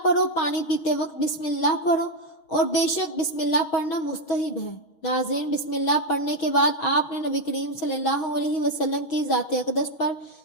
پڑھو، پانی پیتے وقت بسم اللہ پڑھو اور بے شک بسم اللہ پڑھنا مستحب ہے۔ ناظرین، بسم اللہ پڑھنے کے بعد آپ نے نبی کریم صلی اللہ علیہ وسلم کی ذات اقدس پر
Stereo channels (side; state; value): right; late; 6.4 ms